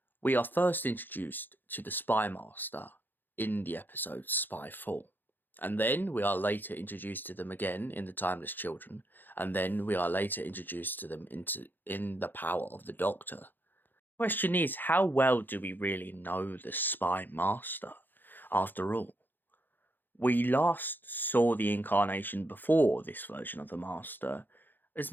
we are first introduced to the spymaster in the episode Spyfall, and then we are later introduced to them again in the Timeless Children, and then we are later introduced to them in the Power of the Doctor. The question is, how well do we really know the spymaster? After all, we last saw the incarnation before this version of the Master as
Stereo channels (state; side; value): late; right; 0.091 ms